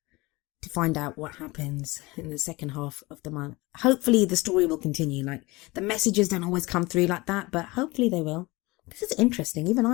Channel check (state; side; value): quieter; right; 22.6 dB